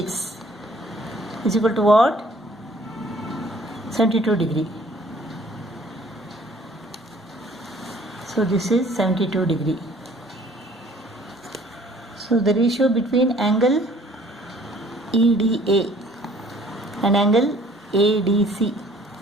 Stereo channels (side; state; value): both; normal; correlation 0.56